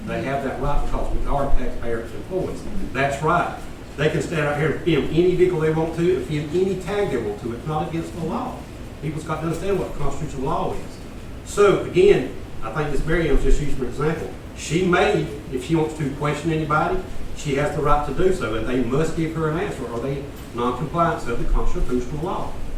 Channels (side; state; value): both; identical; correlation 1.00